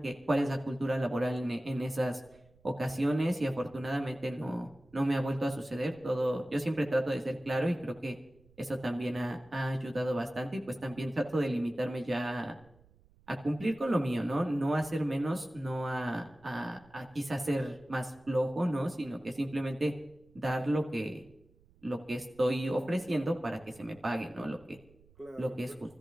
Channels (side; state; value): right; noise; rumble, 28 dB below the sound